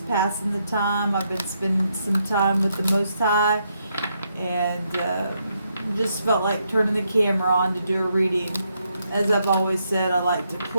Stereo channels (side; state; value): both; inverted; correlation -0.78